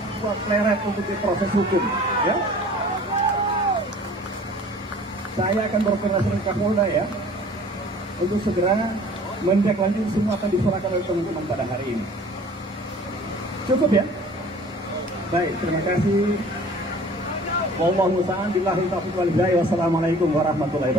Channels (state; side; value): normal; both; correlation 0.48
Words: Pleret untuk diproses hukum. Ya, saya akan berkoordinasi dengan Kapolda ya untuk segera menindaklanjuti semua akan diserahkan oleh teman-teman pada hari ini. Cukup ya? Baik, terima kasih. Wallahu ta'ala billahi taufiq wal hidayah. Wassalamualaikum warahmatullahi